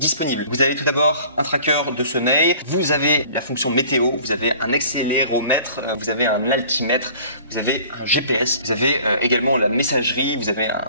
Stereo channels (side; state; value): both; inverted; correlation -0.49